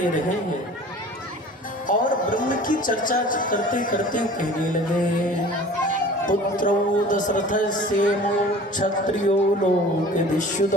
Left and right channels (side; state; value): both; normal; correlation 0.44